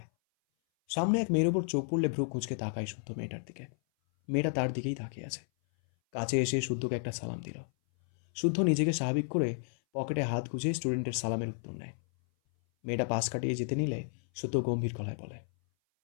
সামনে এক মেয়ের ওপর চোখ পড়লে ভ্রু কুঁচকে তাকায় শুদ্ধ মেয়েটার দিকে। মেয়েটা তার দিকেই তাকিয়ে আছে। কাছে এসে শুদ্ধকে একটা সালাম দিল। শুদ্ধ নিজেকে স্বাভাবিক করে পকেটে হাত গুজে স্টুডেন্টের সালামের উত্তর নেয়। মেয়েটা পাশ কাটিয়ে যেতে নিলে শুদ্ধ গম্ভীর গলায় বলে,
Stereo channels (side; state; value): right; silent; 56 dB below the other